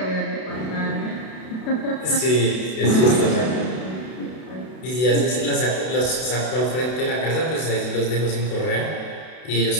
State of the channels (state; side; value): late; right; 32 ms